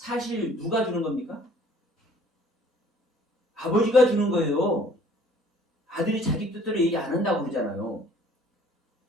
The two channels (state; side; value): normal; both; correlation 0.55